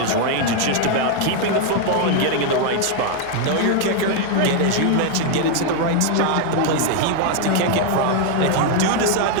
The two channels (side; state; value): both; different; correlation 0.00